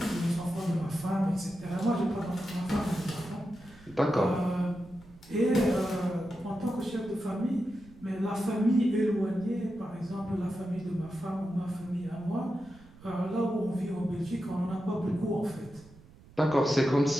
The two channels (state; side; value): noise; right; rumble, 23 dB below the sound